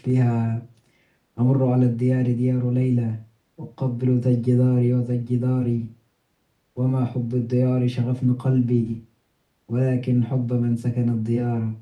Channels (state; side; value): identical; both; correlation 1.00